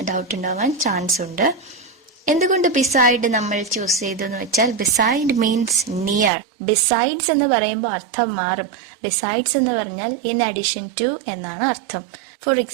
ഡൗട്ട് ഉണ്ടാവാൻ ചാൻസ് ഉണ്ട്. എന്തുകൊണ്ട് ബിസൈഡ് നമ്മൾ ചൂസ് ചെയ്തു എന്ന് വെച്ചാൽ ബിസൈഡ് മീൻസ് നിയർ. ബിസൈഡ്സ് എന്ന് പറയുമ്പോൾ അർത്ഥം മാറും. ബിസൈഡ്സ് എന്ന് പറഞ്ഞാൽ ഇൻ അഡീഷൻ ടു എന്നാണ് അർത്ഥം. For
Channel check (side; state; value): left; drops out; at 6.3 s